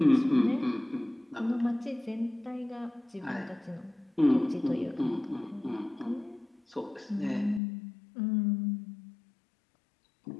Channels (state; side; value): drops out; right; at 7.6 s